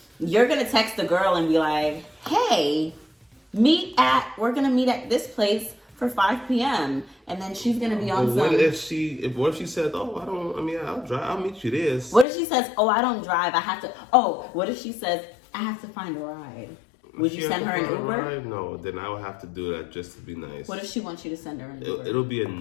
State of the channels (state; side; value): drops out; right; at 12.2 s